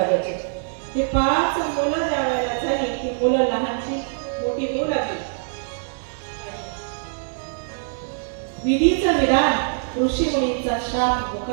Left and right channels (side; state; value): left; silent; digital silence